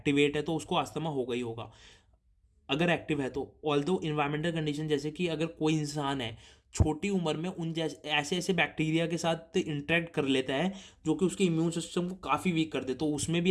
है तो उसको अस्थमा होगा ही होगा, अगर एक्टिव है तो। ऑल्दो इन्वायरमेंटल कंडीशन, जैसे कि अगर कोई इंसान है छोटी उम्र में उन जैसे ऐसे ऐसे बैक्टीरिया के साथ इंटरेक्ट कर लेता है जो कि उसके इम्यून सिस्टम को काफ़ी वीक कर दे, तो उसमें भी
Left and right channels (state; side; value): identical; both; correlation 1.00